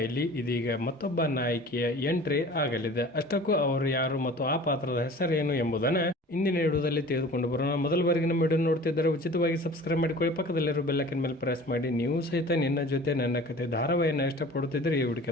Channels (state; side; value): normal; both; correlation 0.43